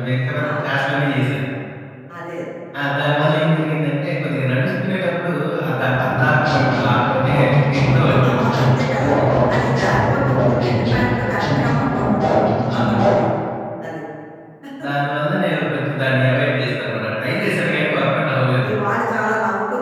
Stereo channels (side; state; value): both; identical; correlation 1.00